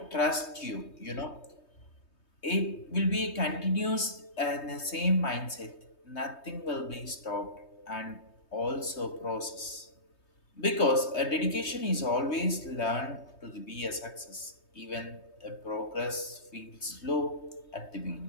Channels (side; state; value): right; late; 3.2 ms